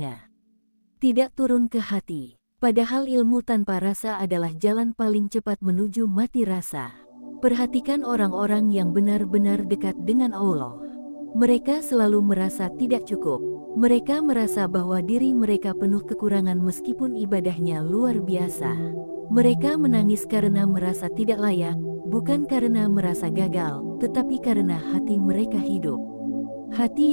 Tidak turun ke hati. Padahal ilmu tanpa rasa adalah jalan paling cepat menuju mati rasa. Perhatikan orang-orang yang benar-benar dekat dengan Allah. Mereka selalu merasa tidak cukup. Mereka merasa bahwa diri mereka penuh kekurangan meskipun ibadahnya luar biasa. Mereka menangis karena merasa tidak layak, bukan karena merasa gagal, tetapi karena hati mereka hidup. Hati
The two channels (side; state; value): both; inverted; correlation -1.00